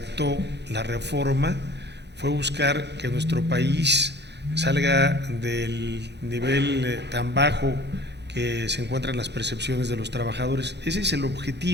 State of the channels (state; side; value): late; left; 0.50 ms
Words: la reforma fue buscar que nuestro país salga del nivel tan bajo que se encuentran las percepciones de los trabajadores. Ese es el